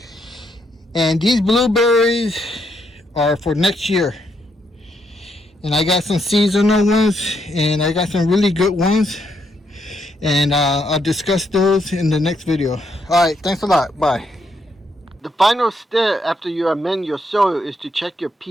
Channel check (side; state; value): both; normal; correlation 0.76